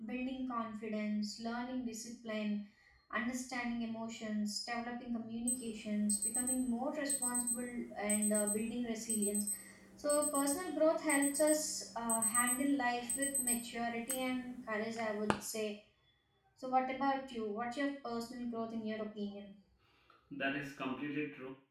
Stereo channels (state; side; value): identical; both; correlation 1.00